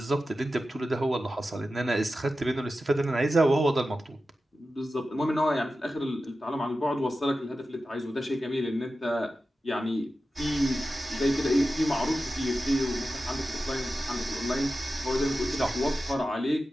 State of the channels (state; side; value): normal; both; correlation 0.93